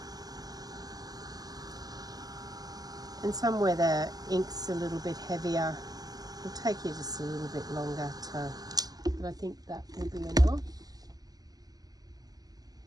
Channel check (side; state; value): left; late; 0.18 ms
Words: And somewhere the ink's a little bit heavier, it'll take you just a little bit longer to, but I think that will be enough.